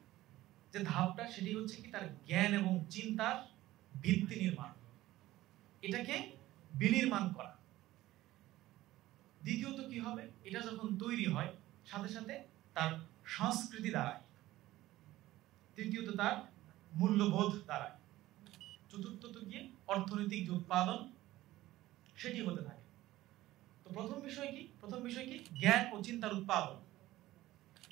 যে ধাপটা সেটি হচ্ছে কি তার জ্ঞান এবং চিন্তার ভিত্তি নির্মাণ, এটাকে বিনির্মাণ করা। দ্বিতীয়ত কি হবে, এটা যখন তৈরি হয় সাথে সাথে তার সংস্কৃতি দাঁড়ায়। তৃতীয়ত তার মূল্যবোধ দাঁড়ায়। চতুর্থত গিয়ে অর্থনৈতিক যে উৎপাদন সেটি হতে থাকে। তো প্রথম বিষয় কি জ্ঞান ও চিন্তার উৎপাদন।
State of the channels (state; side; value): quieter; left; 16.2 dB